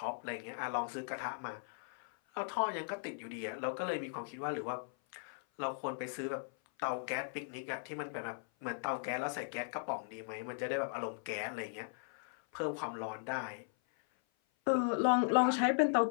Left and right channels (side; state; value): right; silent; 52 dB below the other